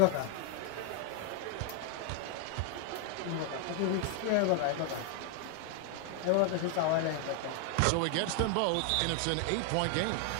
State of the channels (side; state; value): both; different; correlation 0.00